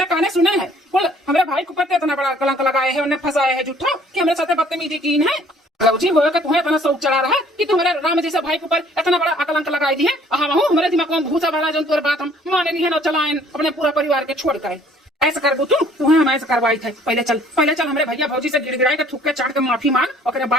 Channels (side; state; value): both; normal; correlation 0.57